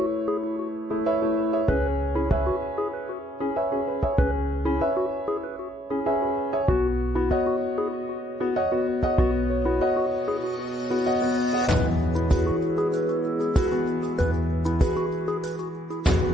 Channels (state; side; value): normal; both; correlation 0.70